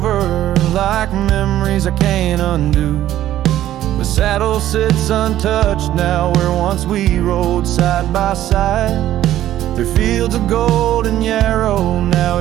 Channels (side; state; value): left; quieter; 12.9 dB